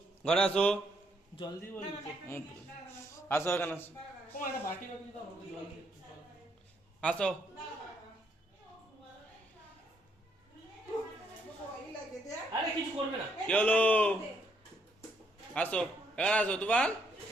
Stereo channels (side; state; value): both; normal; correlation 0.73